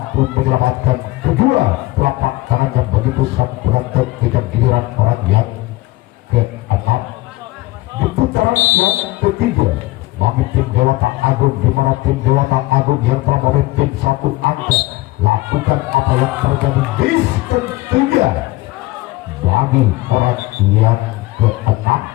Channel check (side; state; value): right; quieter; 19.4 dB